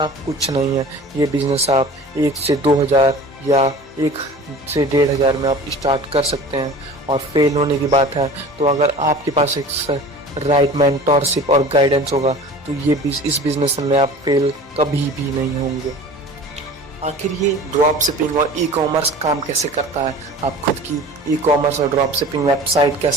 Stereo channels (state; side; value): normal; both; correlation 0.41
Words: कुछ नहीं है। ये बिजनेस आप 1 से 2 हज़ार या 1 से 1,500 में आप स्टार्ट कर सकते हैं। और फेल होने की बात है तो अगर आपके पास एक राइट मेंटरशिप और गाइडेंस होगा तो इस बिजनेस में आप फेल कभी भी नहीं होंगे। आखिर ये ड्रॉप शिपिंग और ई कॉमर्स काम कैसे करता है, आप खुद की ई कॉमर्स और ड्रॉप शिपिंग वेबसाइट